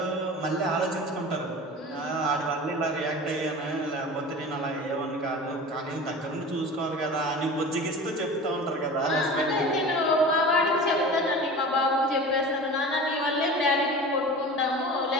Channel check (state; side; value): normal; both; correlation 0.35